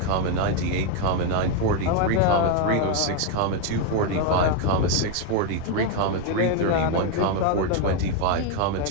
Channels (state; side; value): different; both; correlation 0.01